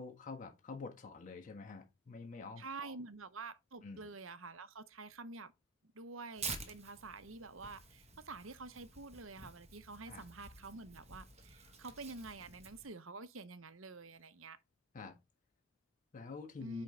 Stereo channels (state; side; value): normal; both; correlation 0.18